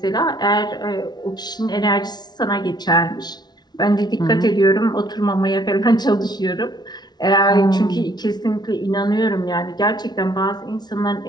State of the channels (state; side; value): late; right; 0.20 ms